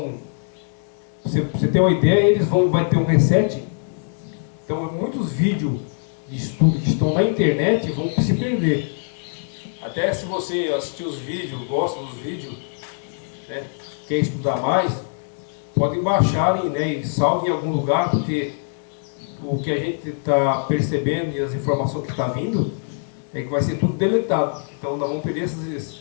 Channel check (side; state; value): right; silent; 64 dB below the other